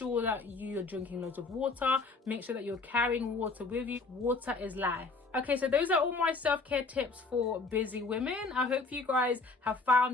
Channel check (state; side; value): quieter; right; 3.9 dB